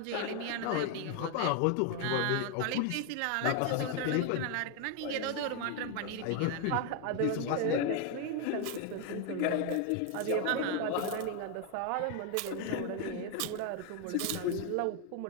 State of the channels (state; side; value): different; both; correlation 0.01